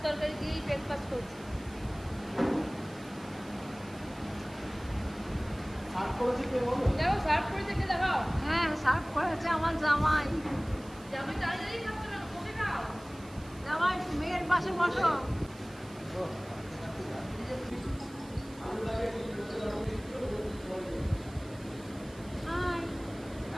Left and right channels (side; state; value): right; noise; hiss, 22 dB below the sound